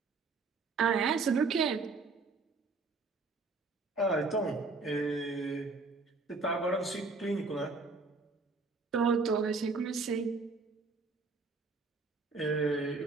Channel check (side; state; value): left; quieter; 4.0 dB